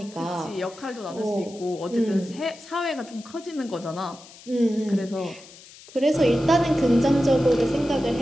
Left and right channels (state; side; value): noise; left; hiss, 20 dB below the sound